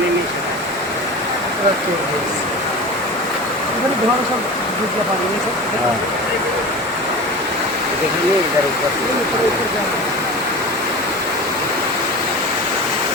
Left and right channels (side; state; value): both; normal; correlation 0.31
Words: नहीं सका पूरा टूट गया इधर घर सब डूब गया पानी में सब हाँ देखिए इधर ऊपर ऊपर जा रहा